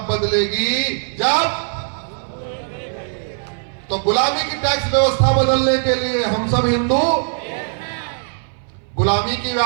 बदलेगी? जब। तो गुलामी की टैक्स व्यवस्था बदलने के लिए हम सब हिंदू, गुलामी की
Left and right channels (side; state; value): left; silent; 60 dB below the other